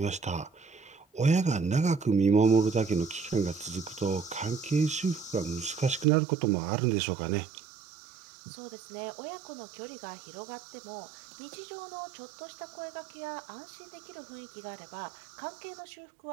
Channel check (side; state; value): left; drops out; at 6.1 s